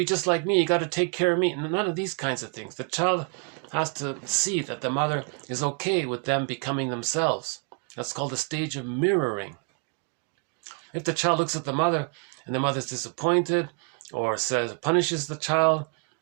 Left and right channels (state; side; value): quieter; left; 34.4 dB